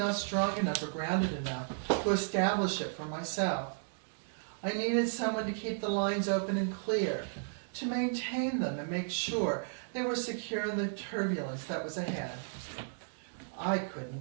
strong enough or grounded enough to establish it for myself. I needed someone to keep the lines open and clear, to maintain them and make sure they were secure in the turbulence that was ahead. I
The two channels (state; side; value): silent; left; digital silence